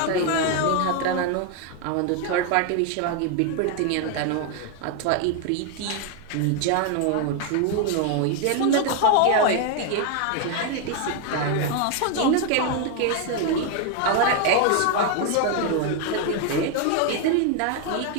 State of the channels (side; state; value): both; different; correlation 0.01